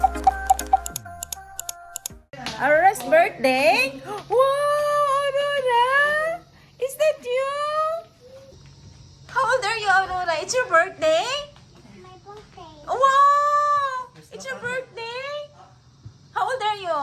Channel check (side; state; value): both; identical; correlation 1.00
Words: Aurora's birthday? Wow, Aurora! Is that you? How old are you, Aurora? It's your birthday? My birthday. Wow! It's your birthday? How old are you?